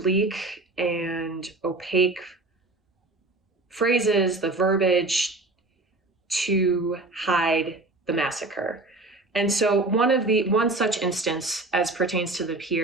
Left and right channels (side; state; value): left; quieter; 3.1 dB